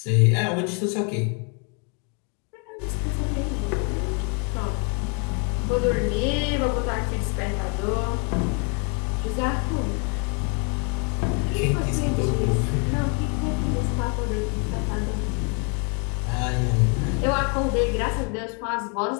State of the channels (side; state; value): right; quieter; 36.9 dB